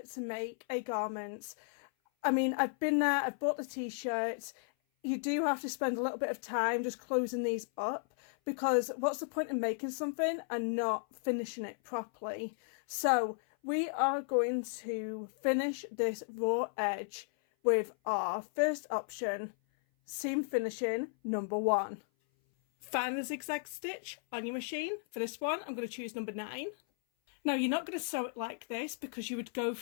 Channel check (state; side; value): silent; right; 55 dB below the other